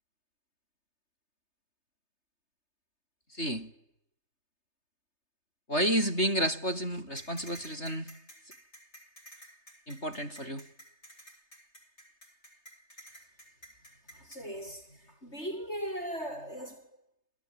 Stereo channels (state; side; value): late; right; 3.3 ms